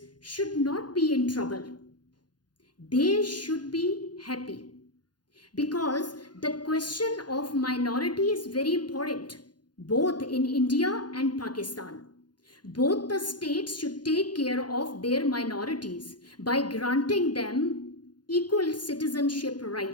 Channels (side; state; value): right; late; 0.70 ms